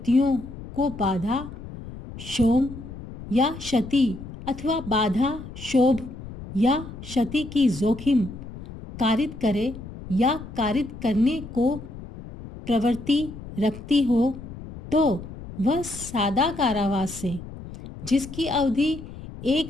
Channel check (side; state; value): left; noise; rumble, 13 dB below the sound